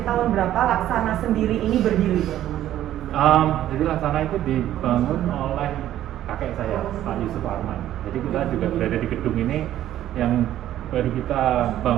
tahun berapa Laksana sendiri ini berdiri? Jadi Laksana itu dibangun oleh kakek saya, Pak Yusuf Arman. Jadi kita juga berada di gedung ini yang baru kita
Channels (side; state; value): left; quieter; 12.5 dB